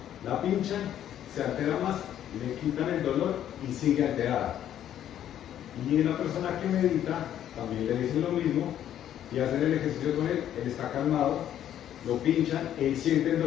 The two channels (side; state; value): right; quieter; 10.8 dB